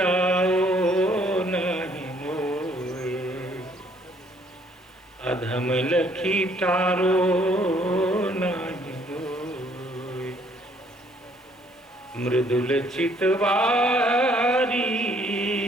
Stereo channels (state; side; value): normal; both; correlation 0.64